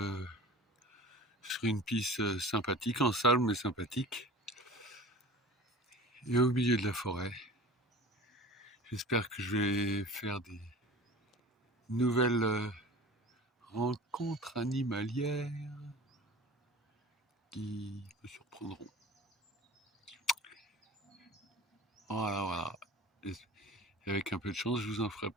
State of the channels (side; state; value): both; normal; correlation 0.39